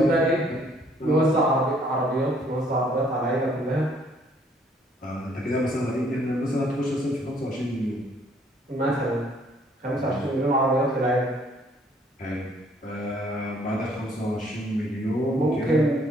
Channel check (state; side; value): normal; both; correlation 0.63